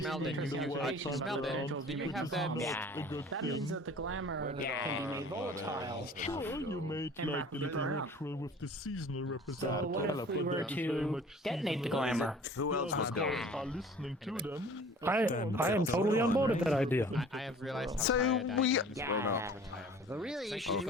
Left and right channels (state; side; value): normal; both; correlation 0.47